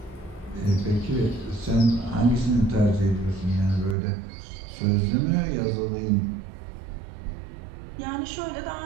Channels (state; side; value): drops out; left; at 4.0 s